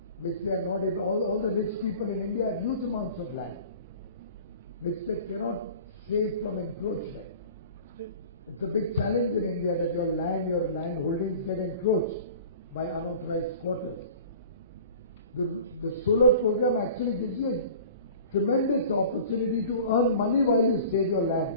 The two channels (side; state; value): both; inverted; correlation -0.43